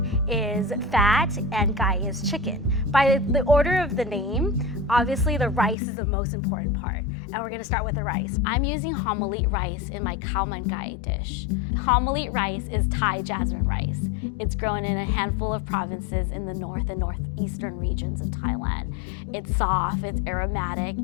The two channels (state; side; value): drops out; right; at 5.8 s